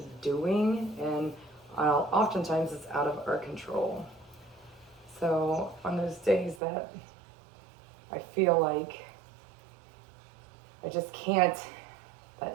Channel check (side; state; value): left; drops out; at 6.6 s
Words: doing, and oftentimes it's out of our control. So on those days that I feel like I just can't